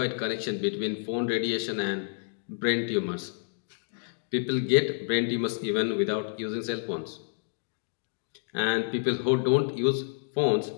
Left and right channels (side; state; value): right; silent; digital silence